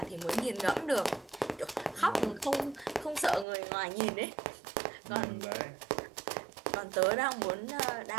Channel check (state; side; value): drops out; left; at 3.5 s